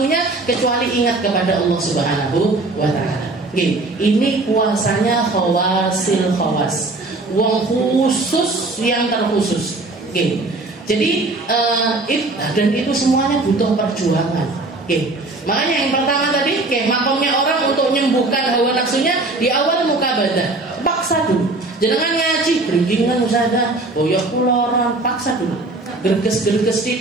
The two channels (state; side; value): quieter; left; 3.1 dB